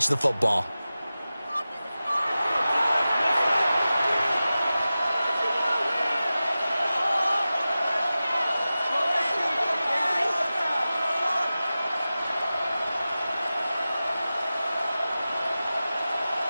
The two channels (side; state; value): both; inverted; correlation -0.95